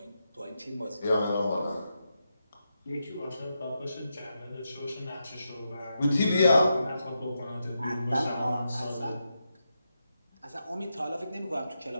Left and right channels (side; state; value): both; inverted; correlation -0.86